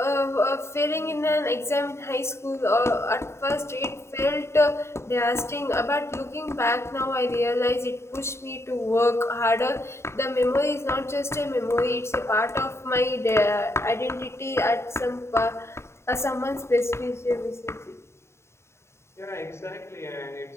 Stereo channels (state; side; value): late; right; 0.13 ms